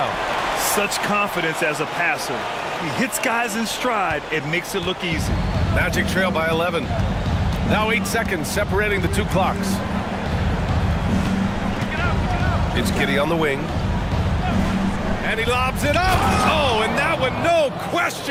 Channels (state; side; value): identical; both; correlation 1.00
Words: Such confidence as a passer. He hits guys in stride. It makes it look easy. Magic trail by 11. Now 8 seconds separating the 2 clocks. It's Giddey on the wing. And he lobs it up. Oh, and that one, no